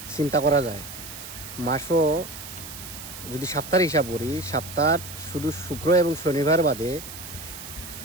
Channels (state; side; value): noise; right; hiss, 12 dB below the sound